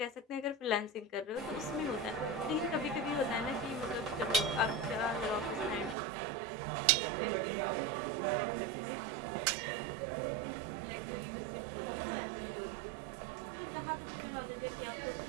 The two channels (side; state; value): left; drops out; at 6.0 s